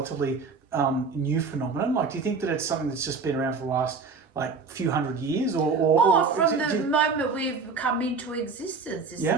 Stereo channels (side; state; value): left; quieter; 4.7 dB